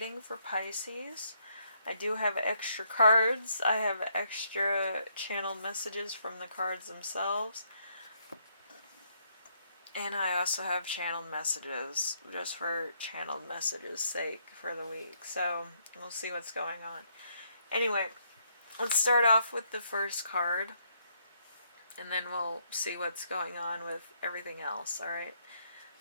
for Pisces. I do have extra cards. I have extra channeled messages from the cards themselves. And I also have channeled messages, just for channeled messages' sake for the week. So, we'll see what's going on. Anyway, let's start off with the first card. And then we'll see what's going on with everything else, alright?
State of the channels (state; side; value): inverted; both; correlation -0.73